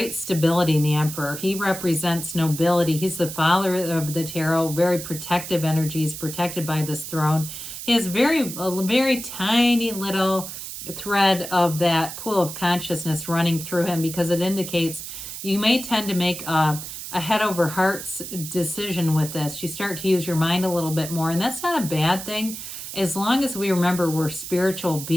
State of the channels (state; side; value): noise; right; hiss, 9 dB below the sound